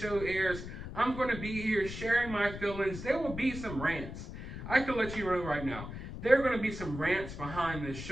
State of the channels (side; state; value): left; noise; rumble, 9 dB below the sound